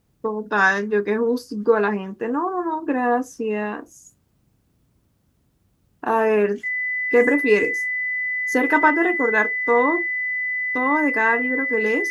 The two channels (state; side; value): identical; both; correlation 1.00